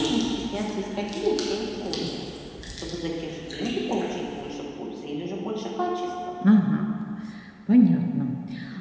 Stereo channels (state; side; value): identical; both; correlation 1.00